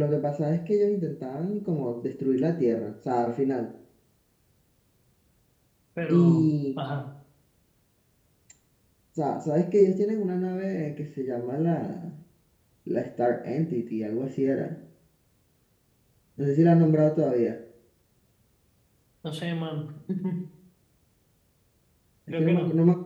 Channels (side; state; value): both; identical; correlation 1.00